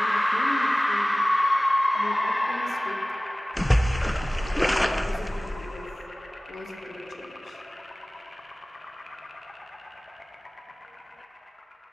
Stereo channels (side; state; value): both; normal; correlation 0.98